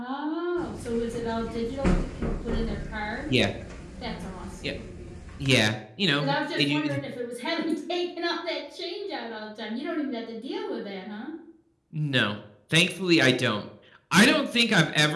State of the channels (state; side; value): identical; both; correlation 1.00